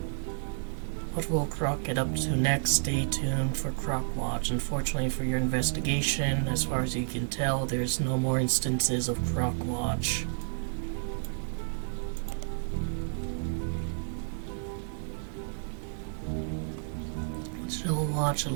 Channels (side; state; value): left; silent; digital silence